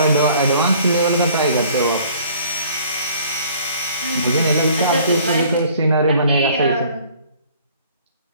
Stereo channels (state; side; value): inverted; both; correlation -0.55